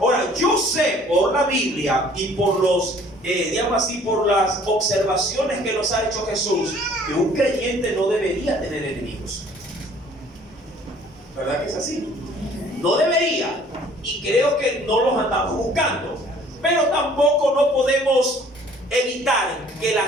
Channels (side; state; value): both; normal; correlation 0.55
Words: yo sé por la Biblia y por los, digamos así, por las observaciones que nos ha hecho Jesús, que un creyente no debería tener enemigos. ¿Verdad que es así? No debería. Y creo que no los andamos buscando. Pero tampoco no podemos evitar que la